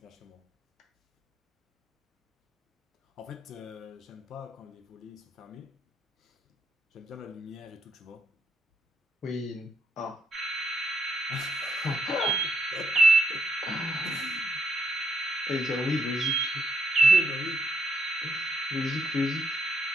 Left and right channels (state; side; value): normal; both; correlation 0.76